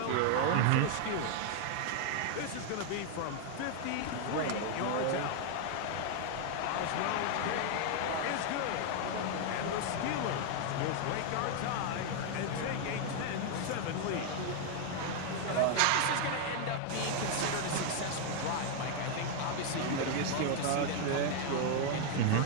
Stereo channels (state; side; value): different; both; correlation 0.00